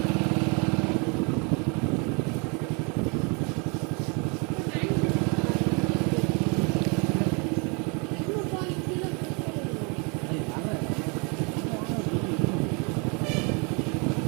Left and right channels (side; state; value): left; quieter; 32.6 dB